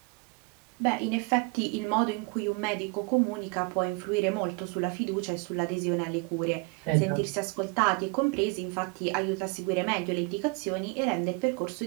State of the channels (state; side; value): quieter; left; 30.1 dB